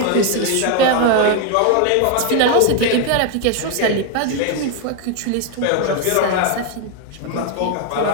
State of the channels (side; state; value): both; different; correlation 0.01